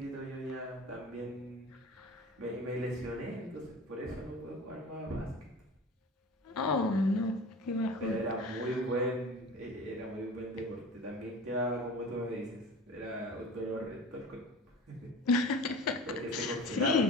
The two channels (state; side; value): normal; both; correlation 0.37